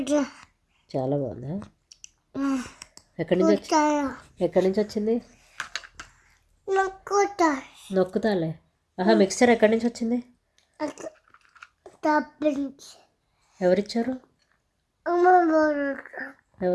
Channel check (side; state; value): both; identical; correlation 1.00